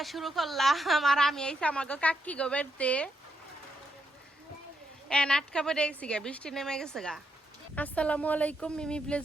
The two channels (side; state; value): both; normal; correlation 0.79